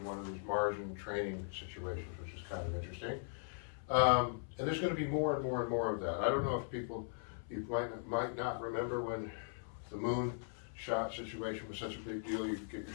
one of these margin training situations, which is kind of interesting. And there's going to be more and more and more of that. I don't know if people, you might not remember when the moon shot situation was such a big deal. You get your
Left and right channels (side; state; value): right; silent; 52 dB below the other